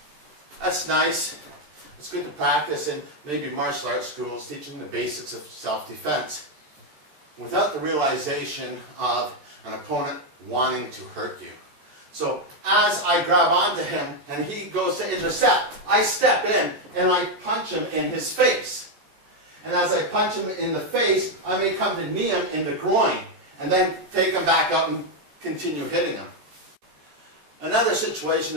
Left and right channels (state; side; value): late; left; 13 ms